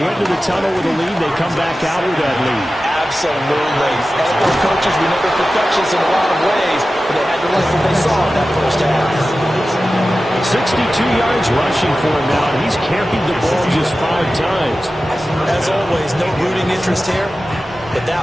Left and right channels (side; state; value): both; normal; correlation 0.94